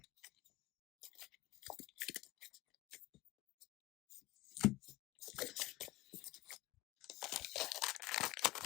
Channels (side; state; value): right; quieter; 19.3 dB